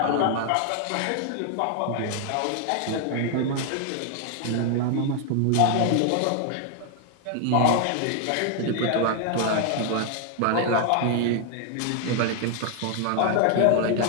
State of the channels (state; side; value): different; both; correlation 0.00